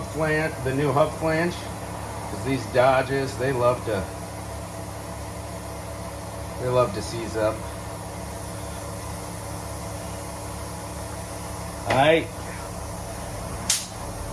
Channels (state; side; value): identical; both; correlation 1.00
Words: flange, the new hub flange, because these Dodges, they love to seize up. All right.